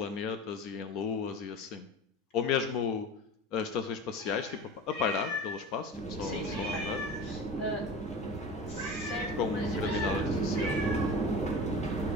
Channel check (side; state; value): both; normal; correlation 0.33